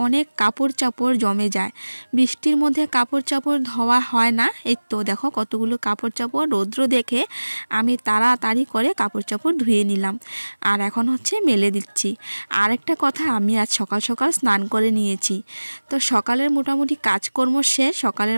অনেক কাপড় চাপড় জমে যায়। বৃষ্টির মধ্যে কাপড় চাপড় ধোয়া হয় না। এই তো দেখো কতগুলো কাপড় চাপড় রৌদ্র দেখে আমি তাড়াতাড়ি করে কাপড় চাপড় ধুয়ে নিলাম, আর এখন হচ্ছে মেলে দিচ্ছি। আর একটা কথা, আমি আজ সকাল সকাল স্নান করে নিয়েছি। তো সকালের মোটামুটি কাজকর্ম শেষ, সকালের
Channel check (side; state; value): both; inverted; correlation -1.00